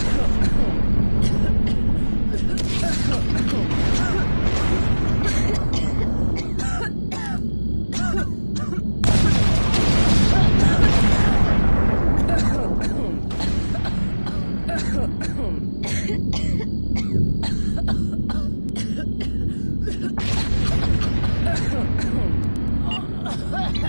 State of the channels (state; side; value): inverted; both; correlation -1.00